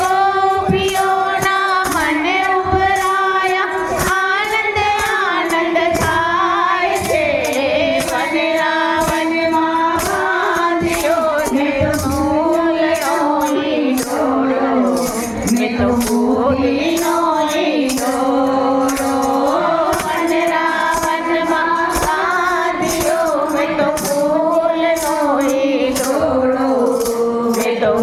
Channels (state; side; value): identical; both; correlation 1.00